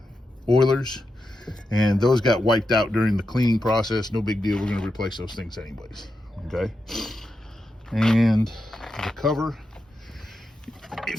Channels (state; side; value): normal; both; correlation 0.88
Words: oilers, and those got wiped out during the cleaning process. No big deal, we're going to replace those things anyways. Okay. And the cover,